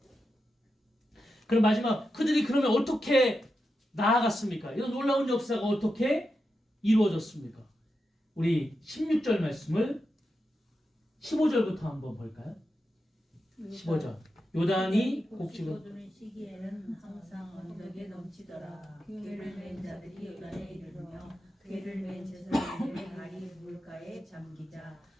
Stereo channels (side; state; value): both; normal; correlation 0.88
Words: 그럼 마지막 그들이 그러면 어떻게 나아갔습니까? 이런 놀라운 역사가 어떻게 이루어졌습니까? 우리 16절 말씀을 15절부터 한번 볼까요? 15절. 요단이 곡식을 거두는 시기에는 항상 언덕에 넘치더라. 괴를 맨 자들이 요단에 이르며 괴를 맨 제사장들의 발이 물가에 잠기자